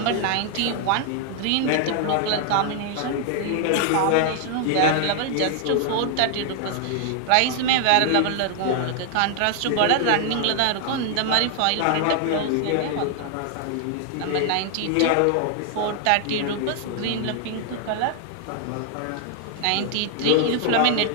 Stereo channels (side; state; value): both; different; correlation 0.00